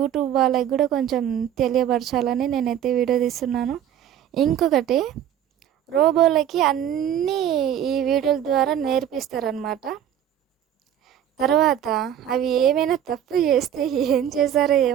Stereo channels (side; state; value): left; quieter; 10.2 dB